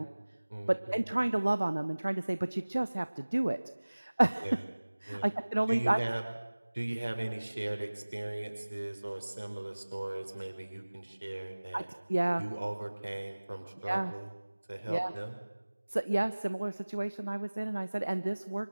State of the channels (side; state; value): both; inverted; correlation -1.00